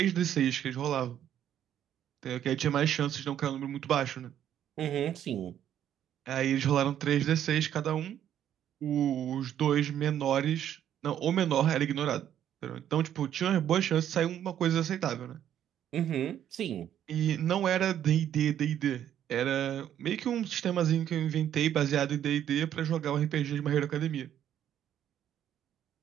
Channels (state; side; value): quieter; left; 10.4 dB